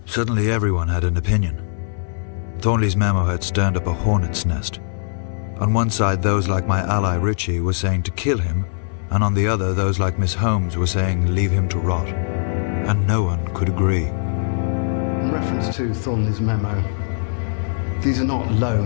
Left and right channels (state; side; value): silent; right; 61 dB below the other